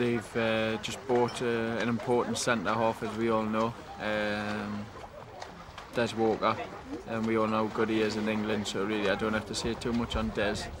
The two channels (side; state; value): both; identical; correlation 1.00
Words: just bought an important centre-half, as we all know, Des Walker, and we all know how good he is in England, so really I don't have to say too much on Des.